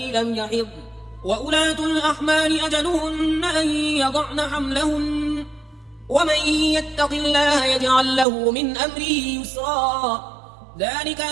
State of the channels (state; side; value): drops out; left; at 8.2 s